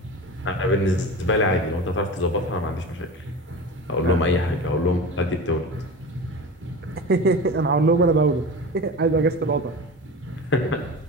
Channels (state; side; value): normal; both; correlation 0.31